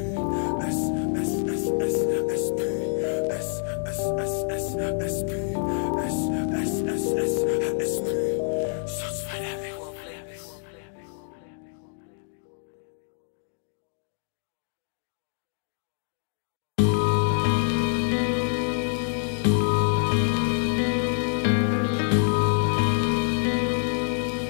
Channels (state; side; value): silent; right; digital silence